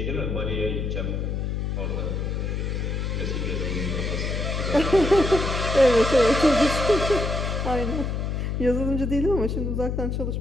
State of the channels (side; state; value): left; noise; hum, 1 dB below the sound